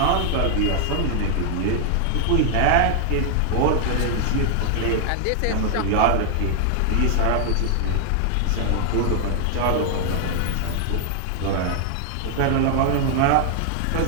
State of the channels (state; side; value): different; both; correlation 0.00